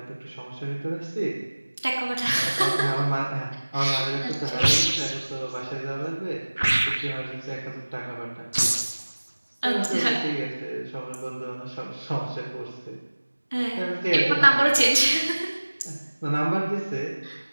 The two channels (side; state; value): both; inverted; correlation -1.00